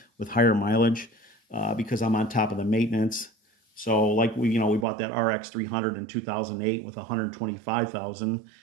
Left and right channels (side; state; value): left; drops out; at 4.9 s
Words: with higher mileage, because I'm on top of the maintenance. So like we bought that RX 300 in 2008 with 125,000,